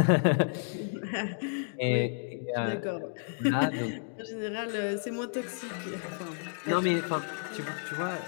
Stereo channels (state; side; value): silent; right; digital silence